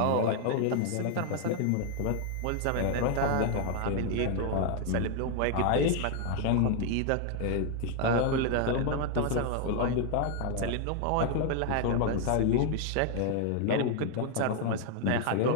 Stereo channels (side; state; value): both; different; correlation 0.00